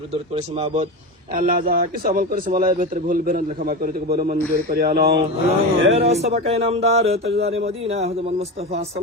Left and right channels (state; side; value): normal; both; correlation 0.22